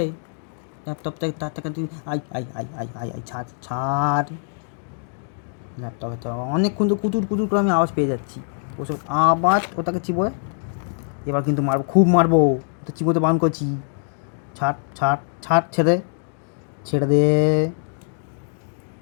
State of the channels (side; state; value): right; silent; digital silence